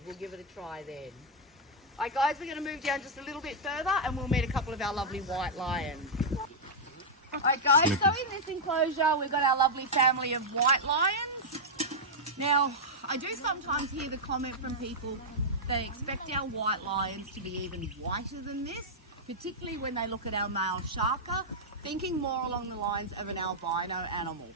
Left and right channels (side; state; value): both; normal; correlation -0.05